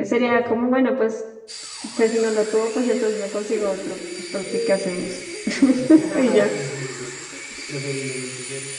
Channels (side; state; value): both; identical; correlation 1.00